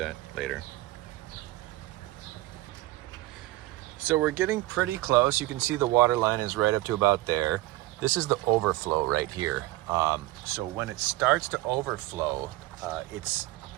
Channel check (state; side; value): quieter; left; 18.0 dB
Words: later. So we're getting pretty close. You can see the water line is right up to about there. This is the overflow right here. So when it starts to overflow, it's